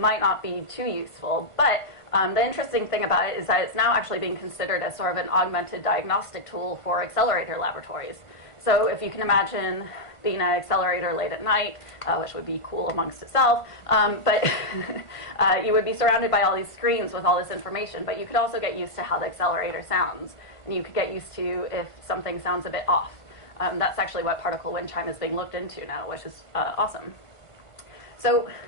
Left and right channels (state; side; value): late; right; 1.5 ms